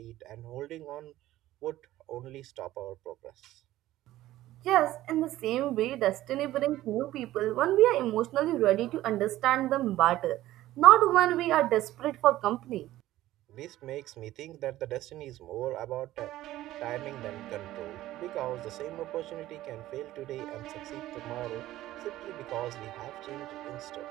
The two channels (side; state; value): left; quieter; 15.1 dB